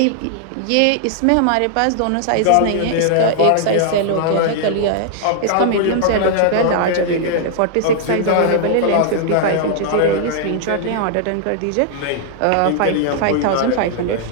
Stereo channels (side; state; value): both; different; correlation -0.01